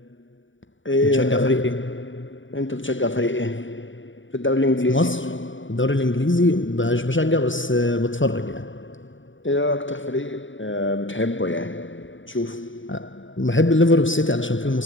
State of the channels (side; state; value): right; late; 0.56 ms